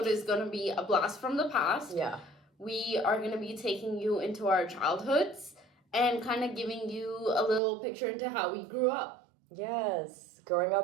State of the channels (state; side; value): drops out; left; at 7.6 s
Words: is going to be a blast from the past. Yeah. We are going to be taking you into our childhoods and kind of giving you a little picture into how we grew up. Yes. Growing